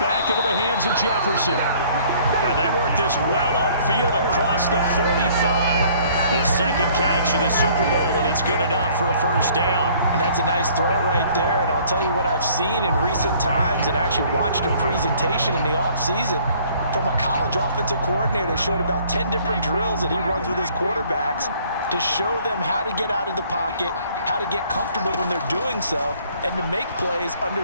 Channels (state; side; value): inverted; both; correlation -0.57